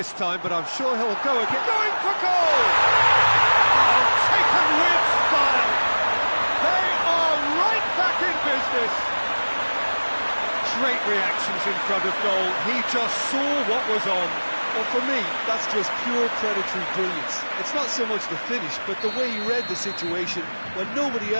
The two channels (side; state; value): both; inverted; correlation -1.00